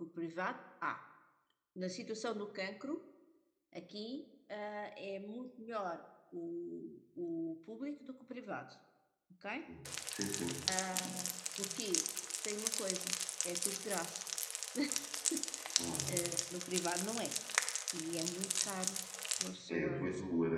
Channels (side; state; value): both; identical; correlation 1.00